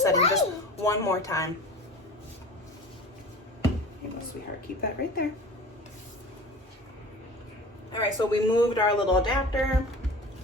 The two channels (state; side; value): normal; both; correlation 0.38